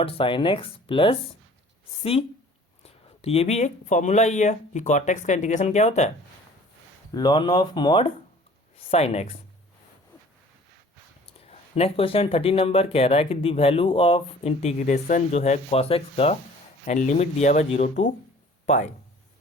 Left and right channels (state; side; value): normal; both; correlation 0.50